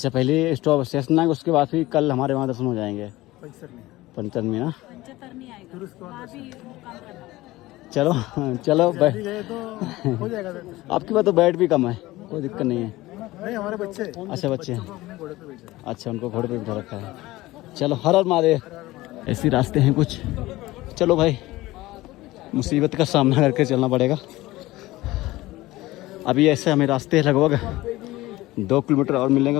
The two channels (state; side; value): quieter; right; 18.3 dB